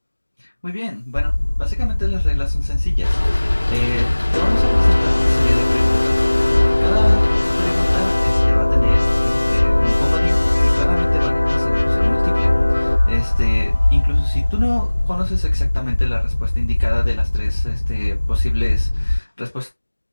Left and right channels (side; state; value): both; inverted; correlation -1.00